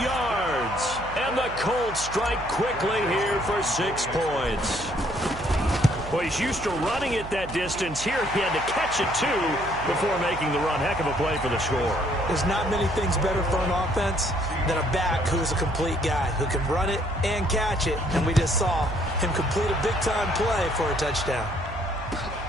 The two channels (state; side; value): noise; right; hum, 13 dB below the sound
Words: And the Colts strike quickly here for 6 points. Well, he's used to running it that distance. Here he had to catch it, too, before making the run. Heck of a play for the score. There's not many things better for an offense than a back who is a complete guy, who can run it and catch it. And we just saw him complete a big-time play for a touchdown.